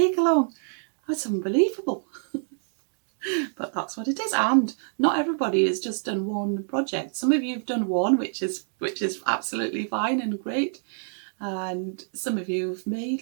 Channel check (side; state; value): left; silent; digital silence